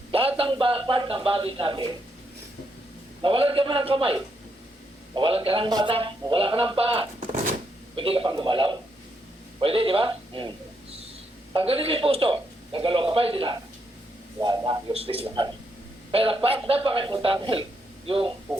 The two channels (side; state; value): both; normal; correlation 0.78